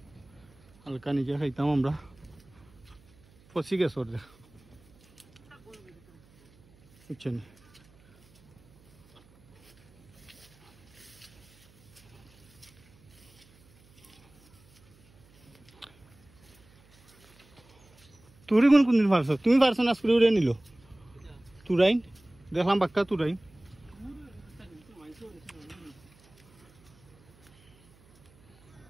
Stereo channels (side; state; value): right; noise; hum, 28 dB below the sound